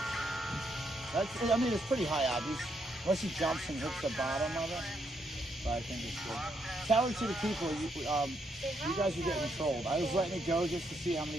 That's, I mean, it's pretty high, obvious. Unless he jumps and hits the bottom of it. But I think it's good. Tell it to the people, you guys are getting trolled. I was letting it go just to see how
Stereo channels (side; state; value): both; normal; correlation 0.77